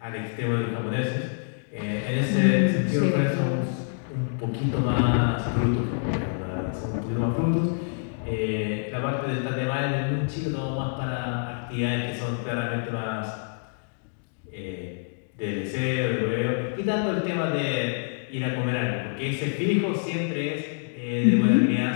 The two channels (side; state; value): right; silent; digital silence